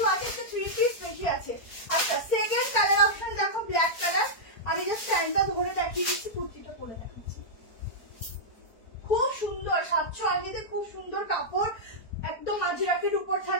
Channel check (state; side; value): late; right; 4.4 ms